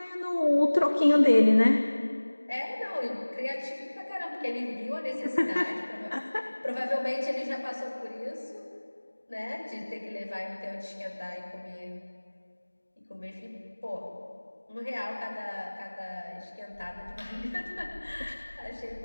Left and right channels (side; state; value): both; inverted; correlation -1.00